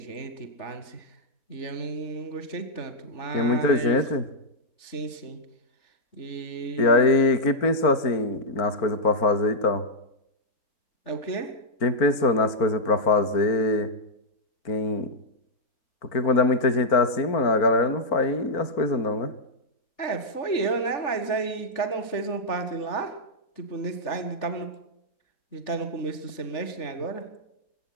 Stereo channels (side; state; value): right; late; 3.4 ms